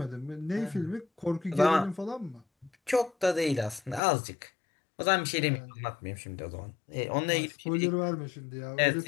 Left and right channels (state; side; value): drops out; right; at 4.0 s